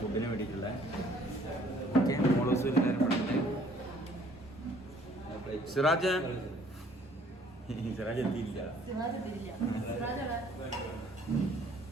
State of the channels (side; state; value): both; normal; correlation 0.58